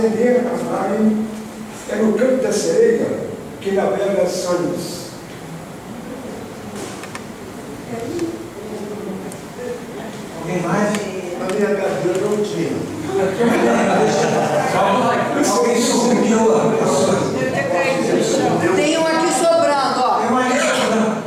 a navegar é no canto da sereia que navega sonhos. Alguém mais? A minha garganta não tinha. Alguém subiu lá. Tem um aqui sobrando, ó. Tem um aqui sobrando.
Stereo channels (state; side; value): identical; both; correlation 1.00